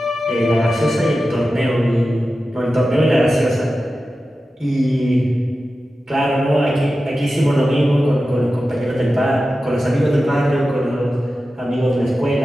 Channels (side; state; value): both; normal; correlation 0.93